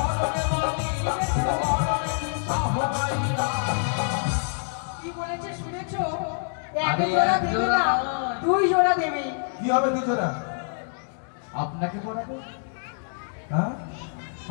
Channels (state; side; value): silent; right; digital silence